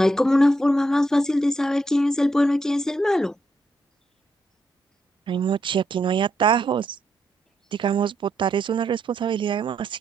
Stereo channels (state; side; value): normal; both; correlation 0.80